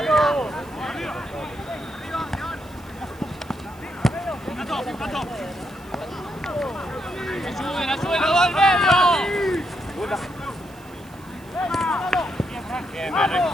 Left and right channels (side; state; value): right; noise; hiss, 26 dB below the sound